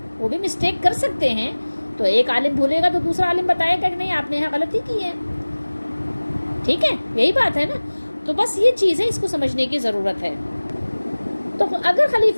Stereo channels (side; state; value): both; inverted; correlation -1.00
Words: وہ بھی مسٹیک کر سکتے ہیں، تو ایک عالم بھولے گا تو دوسرا عالم بتائے گا کہ نہیں آپ نے یہاں غلطی کی ہے، ٹھیک ہے؟ یہی بات ہے نا۔ تو بس یہ چیز ہے، اس کو سمجھنے کی ضرورت ہے۔ تو اگر